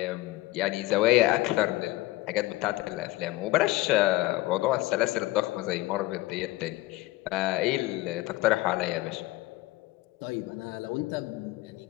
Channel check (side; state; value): right; quieter; 18.6 dB